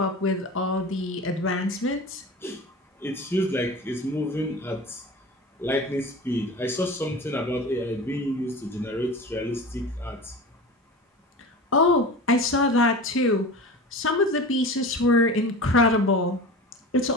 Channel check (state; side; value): normal; both; correlation 0.33